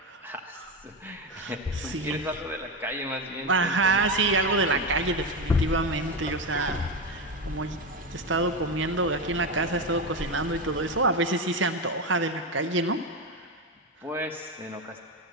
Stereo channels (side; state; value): both; normal; correlation 0.15